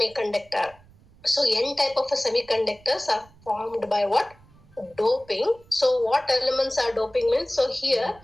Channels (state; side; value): noise; right; rumble, 27 dB below the sound